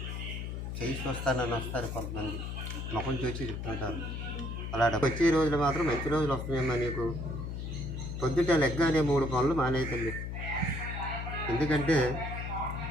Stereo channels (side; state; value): left; noise; hum, 5 dB below the sound